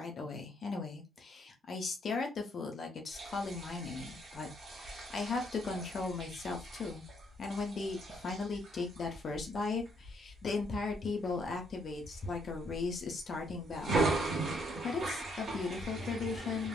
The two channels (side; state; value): both; normal; correlation 0.71